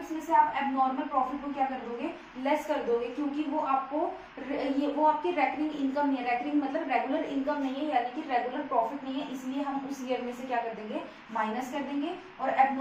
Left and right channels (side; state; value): both; identical; correlation 1.00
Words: में से आप एबनॉर्मल प्रॉफिट को क्या कर दोगे, लेस कर दोगे, क्योंकि वो आपको वो आपकी रेकरिंग इनकम नहीं है। रेकरिंग मतलब रेगुलर इनकम नहीं है, यानी कि रेगुलर प्रॉफिट नहीं है, इसलिए हम उस ईयर में से क्या कर देंगे, माइनस कर देंगे। और